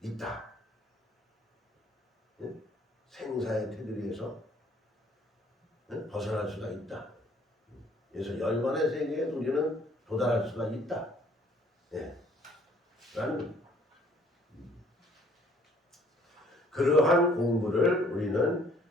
네? 생사의 테두리에서 벗어날 수가 있다. 그래서 열반의 세계에 우리는 도달할 수가 있다. 네. 라는 그러한 공부를 우리는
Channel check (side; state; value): both; normal; correlation 0.60